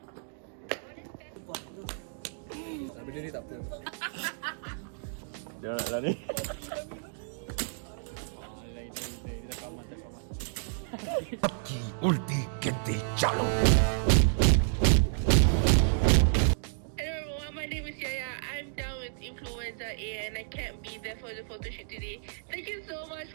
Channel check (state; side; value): silent; left; digital silence